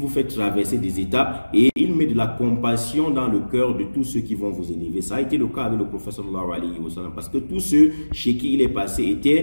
fait traverser des étapes et il met de la compassion dans le cœur de tous ceux qui vont vous élever. Ça a été le cas avec le prophète sallallahu alayhi wa sallam, parce que tous ceux chez qui il est passé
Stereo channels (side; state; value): both; inverted; correlation -1.00